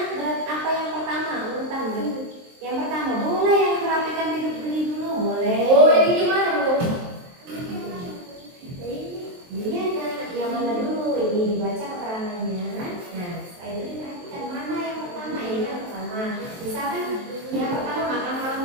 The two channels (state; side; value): late; left; 23 ms